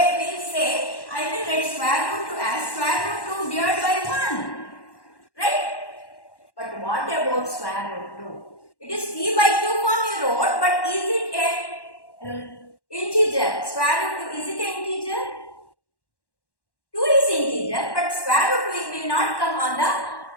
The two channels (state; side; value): late; right; 1.1 ms